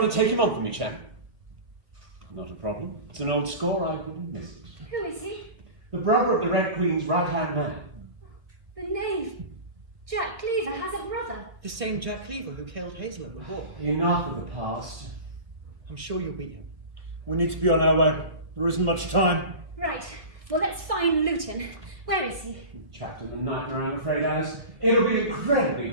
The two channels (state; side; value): late; left; 1.8 ms